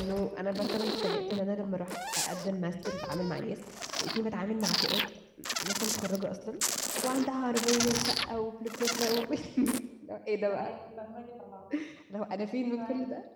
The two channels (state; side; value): identical; both; correlation 1.00